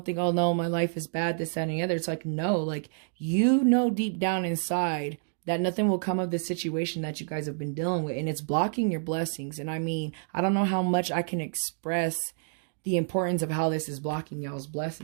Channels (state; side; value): silent; left; digital silence